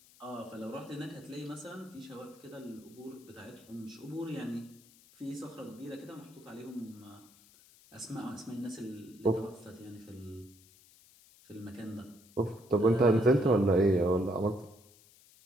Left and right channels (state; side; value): noise; left; hiss, 25 dB below the sound